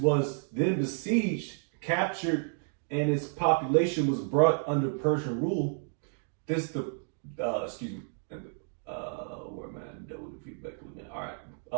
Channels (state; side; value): silent; left; 57 dB below the other